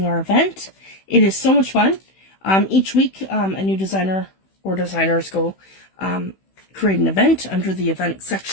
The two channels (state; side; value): late; right; 16 ms